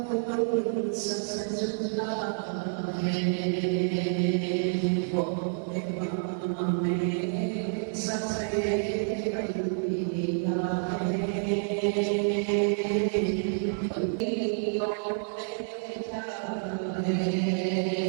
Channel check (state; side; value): silent; left; digital silence